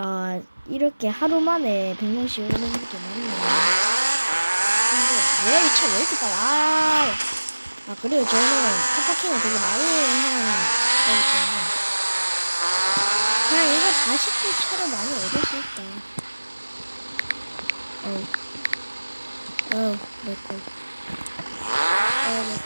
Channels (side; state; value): both; inverted; correlation -1.00